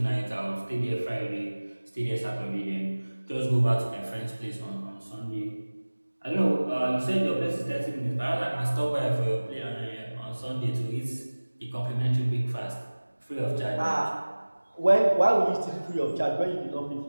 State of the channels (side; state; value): both; inverted; correlation -1.00